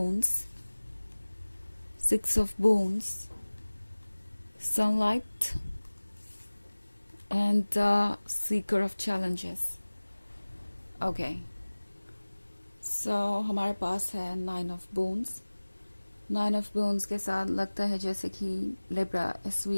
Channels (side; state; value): both; inverted; correlation -1.00